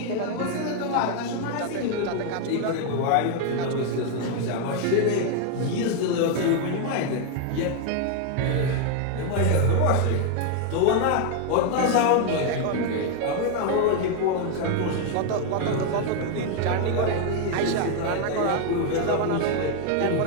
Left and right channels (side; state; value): both; different; correlation 0.00